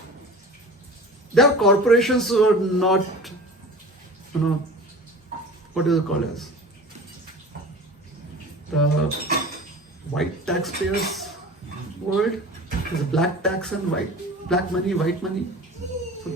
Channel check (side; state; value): both; normal; correlation 0.38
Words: their corporations were not, what is it called as? The white taxpayers world. There's black tax and black money, white money. So